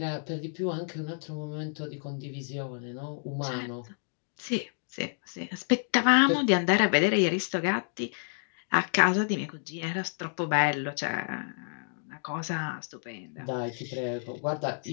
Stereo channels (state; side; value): silent; right; digital silence